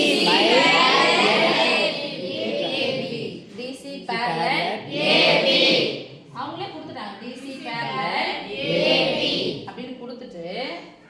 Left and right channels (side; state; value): both; identical; correlation 1.00